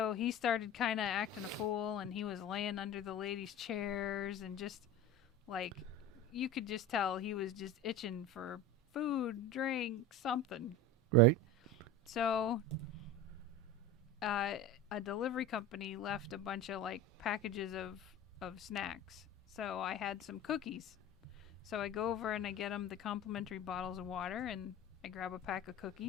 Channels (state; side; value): normal; both; correlation 0.31